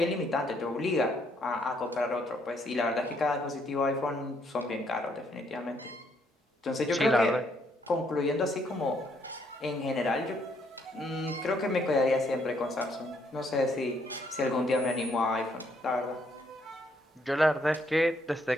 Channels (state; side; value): normal; both; correlation 0.71